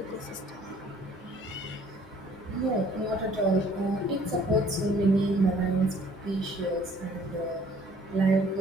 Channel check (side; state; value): both; normal; correlation 0.57